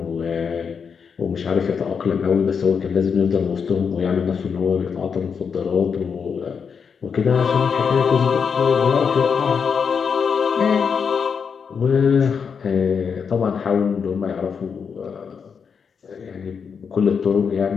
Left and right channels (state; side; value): quieter; right; 6.3 dB